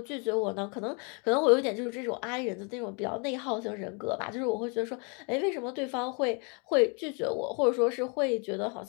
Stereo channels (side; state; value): right; quieter; 34.5 dB